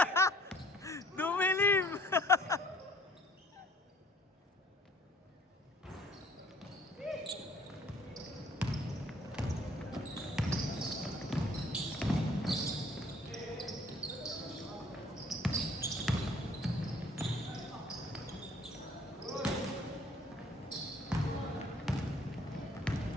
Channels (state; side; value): normal; both; correlation 0.57